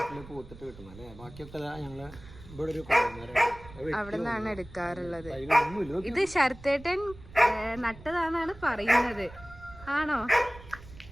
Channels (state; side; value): noise; right; rumble, 18 dB below the sound